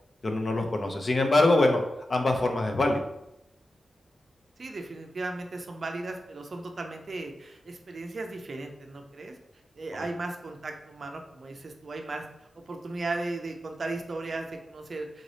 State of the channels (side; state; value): both; normal; correlation 0.91